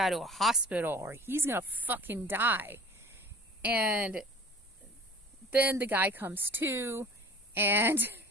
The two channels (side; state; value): both; normal; correlation 0.44